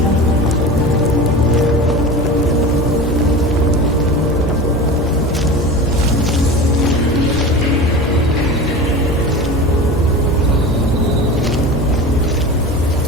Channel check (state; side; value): normal; both; correlation 0.31